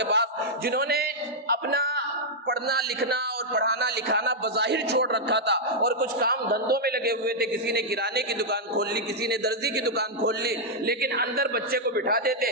پاس جنہوں نے اپنا پڑھنا لکھنا اور پڑھانا لکھانا بظاہر چھوڑ رکھا تھا اور کچھ کام دھندوں میں لگے ہوئے تھے، کسی نے کرانے کی دکان کھول لی، کسی نے درزی کی دکان کھول لی، لیکن اندر بچے کو بٹھا دیتے،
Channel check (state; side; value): normal; both; correlation -0.05